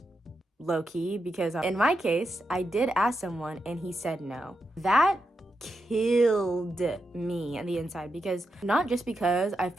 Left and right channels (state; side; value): normal; both; correlation 0.86